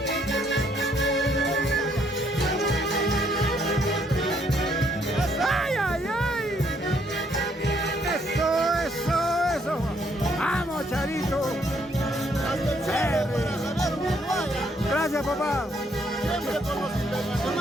¡Vamos, Charito! Gracias, papá. Siempre con los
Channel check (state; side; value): normal; both; correlation 0.69